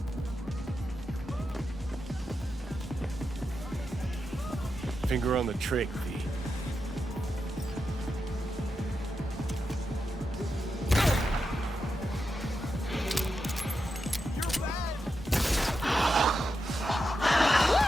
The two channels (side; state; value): both; normal; correlation 0.87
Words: Finger on the trick, V.